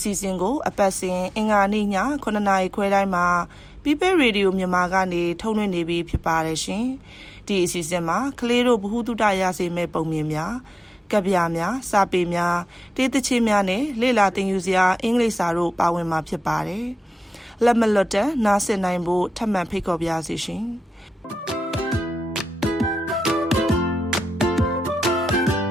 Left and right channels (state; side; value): normal; both; correlation 0.93